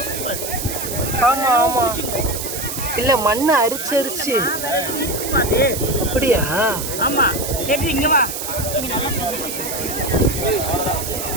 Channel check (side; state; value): right; noise; hiss, 5 dB below the sound